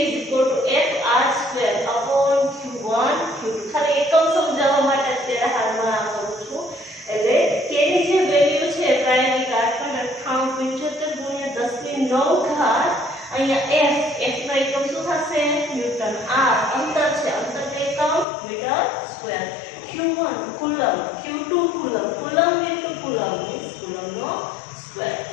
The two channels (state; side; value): drops out; right; at 18.2 s